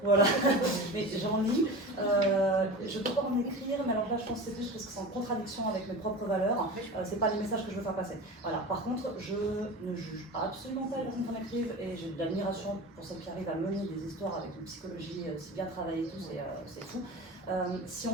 voilà, mais j'en lis, je ne peux pas en écrire, mais alors là je pense que c'est plus parce que c'est en contradiction avec mes propres valeurs, c'est pas les messages que je veux faire passer. Voilà. Par contre, je ne juge absolument pas les personnes qui en écrivent et j'ai de l'admiration pour celles qui arrivent à mener des histoires avec une psychologie si bien travaillée et tout, c'est fou. Si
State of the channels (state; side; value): normal; both; correlation 0.32